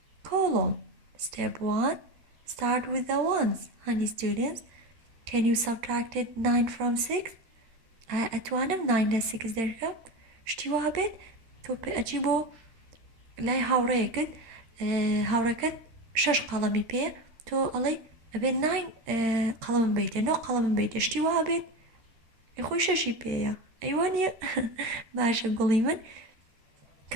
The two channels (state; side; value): late; left; 13 ms